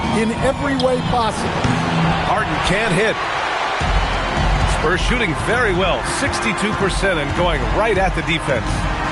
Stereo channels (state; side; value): identical; both; correlation 1.00